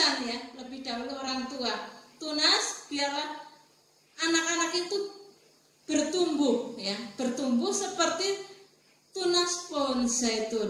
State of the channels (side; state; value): both; identical; correlation 1.00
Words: ya, lebih dahulu orang tua. Tunas biarlah anak-anak itu bertumbuh ya, bertumbuh seperti tunas pohon